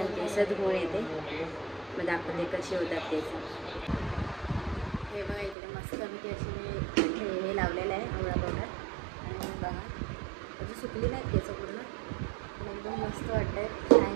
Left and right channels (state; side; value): drops out; left; at 5.6 s